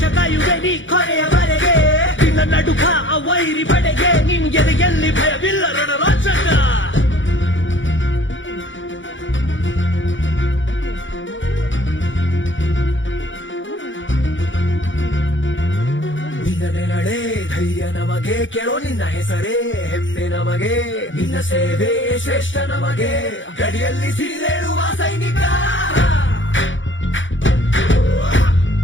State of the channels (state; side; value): late; right; 0.56 ms